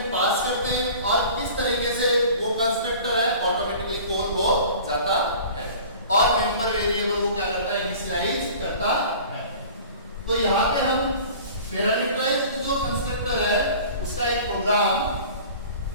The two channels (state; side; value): inverted; both; correlation -0.43